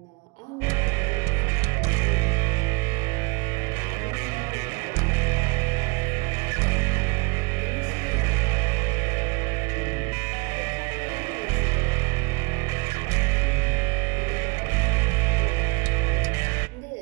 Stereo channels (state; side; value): quieter; left; 28.8 dB